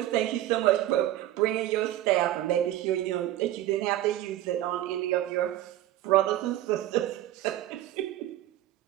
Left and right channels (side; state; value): left; quieter; 13.7 dB